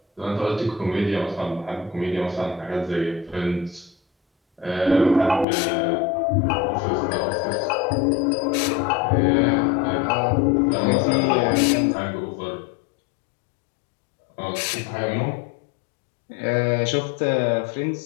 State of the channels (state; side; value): drops out; right; at 5.5 s